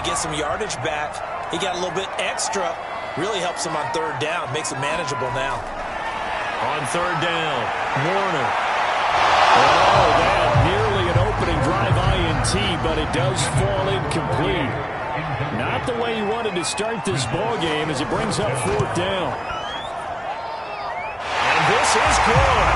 he get some yardage back, he got a little bit extra. Really helps him on 3rd down. Makes it manageable now. On 3rd down, Warner. Oh, that nearly an opening drive INT, but it does fall incomplete. Not the way he wanted to start this ball game as it brings up 4th down. And this is good.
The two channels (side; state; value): both; identical; correlation 1.00